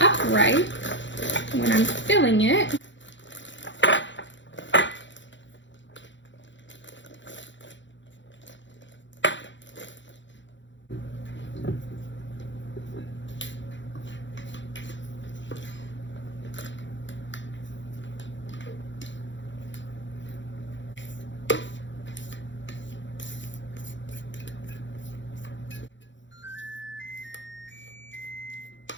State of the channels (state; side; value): late; right; 0.54 ms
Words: when I'm filling it.